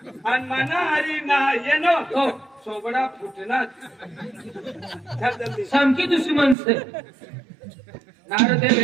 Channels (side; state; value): left; drops out; at 6.6 s